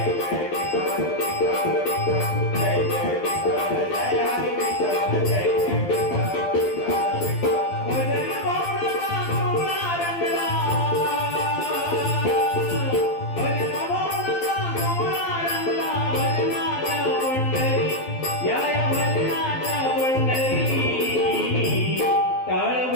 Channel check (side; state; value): right; late; 12 ms